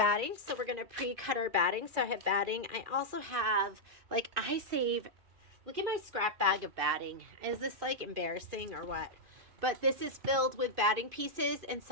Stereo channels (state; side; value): late; left; 2.5 ms